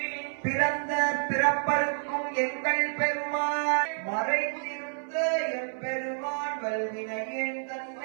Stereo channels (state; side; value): silent; left; 59 dB below the other